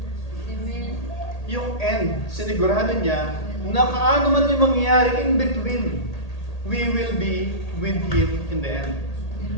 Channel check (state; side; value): late; right; 1.8 ms